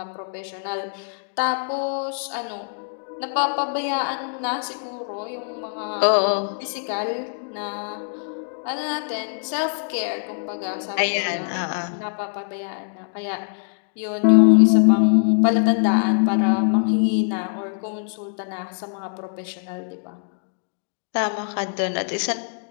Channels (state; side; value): silent; right; digital silence